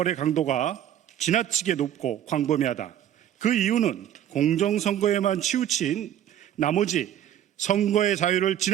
강도가 지나치게 높고 광범위하다. 그 이유는 공정선거에만 치우친 나머지 선거의 자유를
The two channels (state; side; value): quieter; left; 10.9 dB